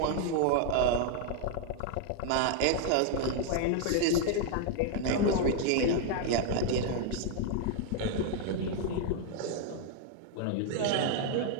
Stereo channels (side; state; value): both; different; correlation 0.00